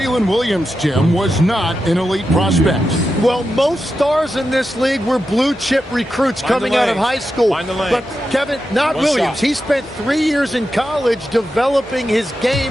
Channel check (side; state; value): both; normal; correlation 0.89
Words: Williams, Tim, was not an elite prospect. Well, most stars in this league were blue chip recruits coming out of high school. But Kevin, not Williams. He spent 3 years in college developing his